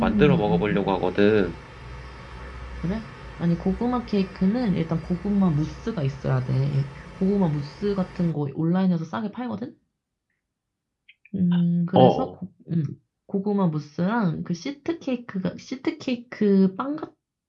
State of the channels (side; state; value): both; identical; correlation 1.00